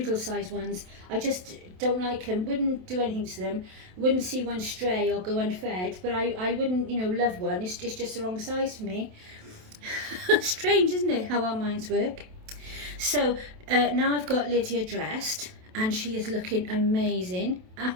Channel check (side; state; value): left; late; 27 ms